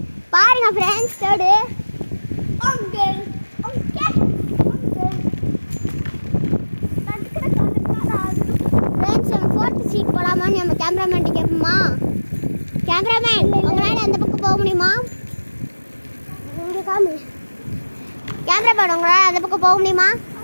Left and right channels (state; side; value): inverted; both; correlation -1.00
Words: பாருங்க ஃப்ரெண்ட்ஸ் தேர்டு. ஃப்ரெண்ட்ஸ் நம்ம ஃபோர்த் சீட் போகலாமான்னு நம்ம கேமராமேன்ட்டு கேட்போமா? கேமராமேன் உங்களால் அந்த பக்கம் போக முடியுமா? கேமராமேன் உங்களால் அந்த பக்கம் போக முடியுமா?